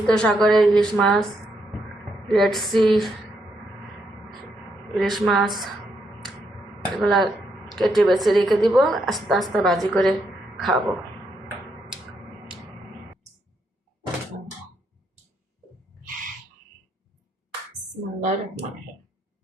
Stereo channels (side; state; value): both; normal; correlation 0.78